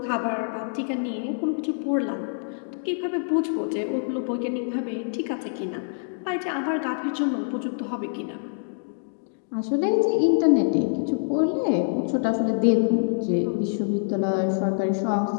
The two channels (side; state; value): right; silent; digital silence